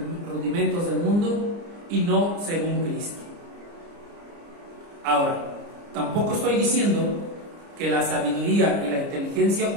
rudimentos del mundo y no según Cristo. Ahora, tampoco estoy diciendo que la sabiduría y la inteligencia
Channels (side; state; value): left; late; 29 ms